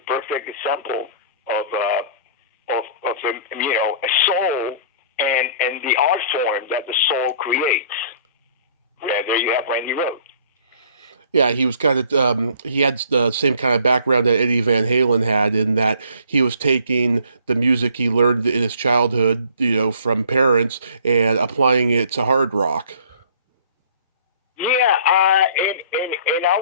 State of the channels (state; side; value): inverted; both; correlation -0.54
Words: perfect example of a soul and the art form that the soul creates. Yeah, there you have Randy Rhoads. Yeah, he was kind of, he had the same kind of background that Eddie Van Halen had in that he was taking the music he learned in his childhood, you know, from parents and applying it to hard rock. Yeah, and